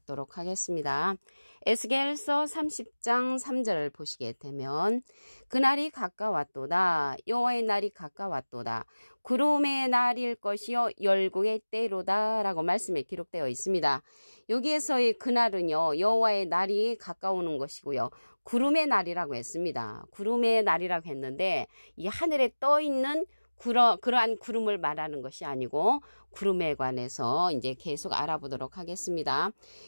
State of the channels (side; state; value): both; inverted; correlation -1.00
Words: 하겠습니다. 에스겔서 30장 3절을 보시게 되면 그날이 가까웠도다. 여호와의 날이 가까웠도다. 구름의 날일 것이요 열국의 때로다 라고 말씀에 기록되어 있습니다. 여기에서의 그날은요 여호와의 날이 가까우는 것이고요. 구름의 날이라고 했습니다. 구름의 날이라고 했는데 이 하늘에 떠있는 그러한 구름을 말하는 것이 아니고 구름에 관해서 이제 계속 알아보도록 하겠습니다.